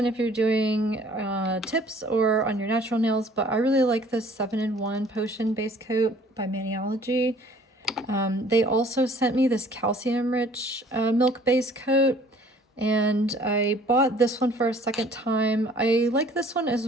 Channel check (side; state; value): both; normal; correlation 0.54